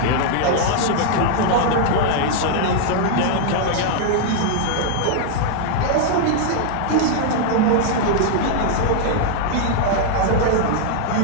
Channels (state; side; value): different; both; correlation 0.00